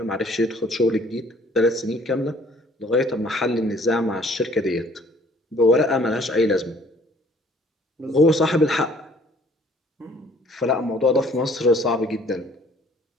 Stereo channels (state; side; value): normal; both; correlation 0.57